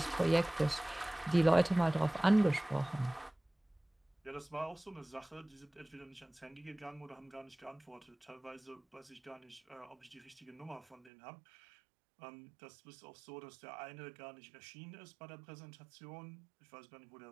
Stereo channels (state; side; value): drops out; left; at 11.1 s